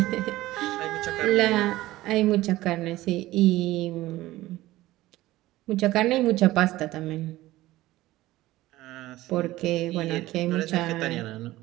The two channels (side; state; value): left; quieter; 16.9 dB